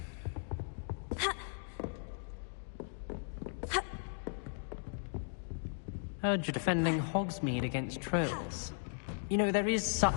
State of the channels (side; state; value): right; silent; digital silence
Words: Heard you're defending Hogsmeade against trolls. You know, there is such